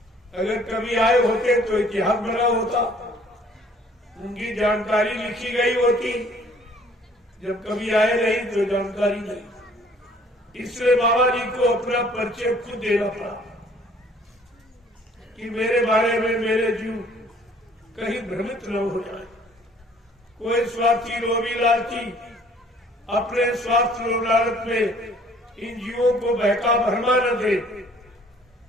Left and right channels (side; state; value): both; normal; correlation 0.57